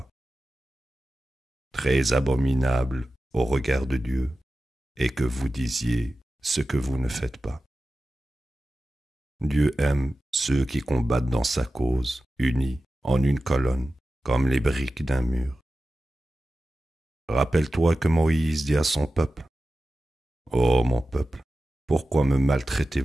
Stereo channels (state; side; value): normal; both; correlation 0.94